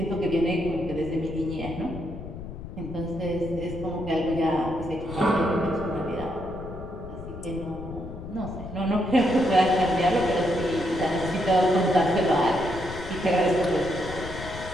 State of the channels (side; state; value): left; noise; rumble, 11 dB below the sound